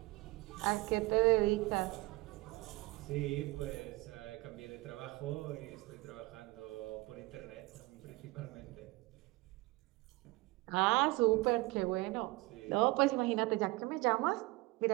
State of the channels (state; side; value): quieter; left; 22.2 dB